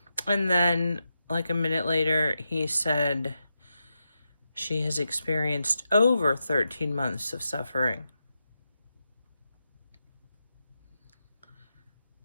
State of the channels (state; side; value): inverted; both; correlation -0.87